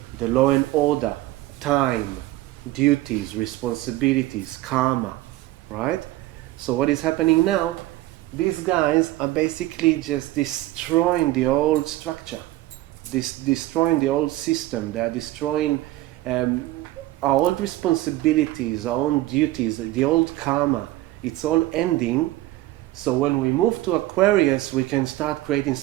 the law and order, time, duties, responsibilities, karma, right? So what is happening now, these guys are basically just destroying the old structure, destroying the old system. They are destroying our old responsibilities, our own duties, the old karma. It's all ending. So when we move to Aquarius, we can start creating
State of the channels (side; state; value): left; quieter; 16.9 dB